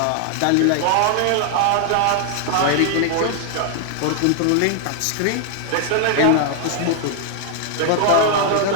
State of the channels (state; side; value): different; both; correlation 0.00